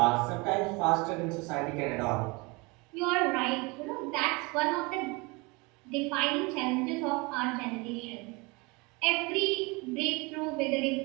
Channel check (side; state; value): left; quieter; 26.8 dB